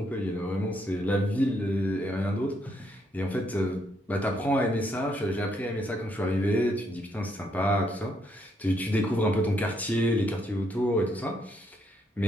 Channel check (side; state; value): both; normal; correlation 0.74